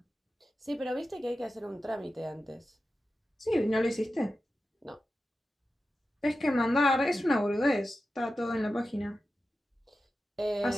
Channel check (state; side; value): normal; both; correlation 0.92